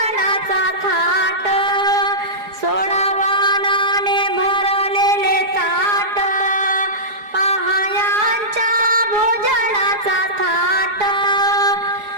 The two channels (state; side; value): late; left; 4.8 ms